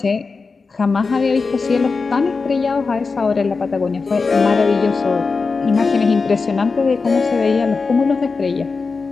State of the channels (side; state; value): right; quieter; 4.4 dB